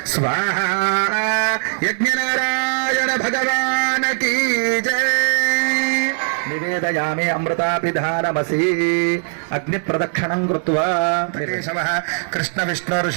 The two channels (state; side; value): silent; left; digital silence